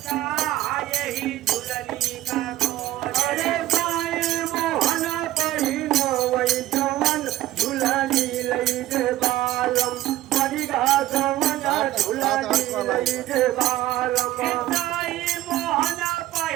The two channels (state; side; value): quieter; left; 15.3 dB